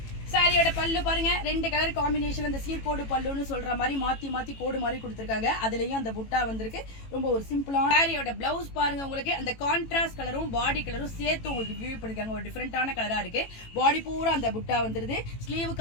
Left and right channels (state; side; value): late; right; 18 ms